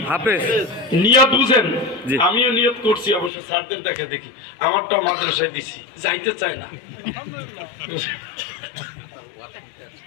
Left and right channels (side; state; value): right; drops out; at 3.3 s